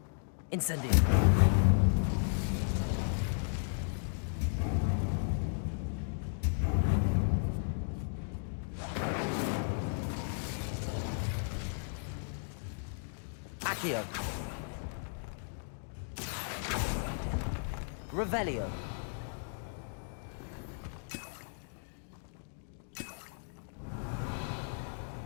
Incendio. Accio. Revelio.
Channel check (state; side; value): silent; right; digital silence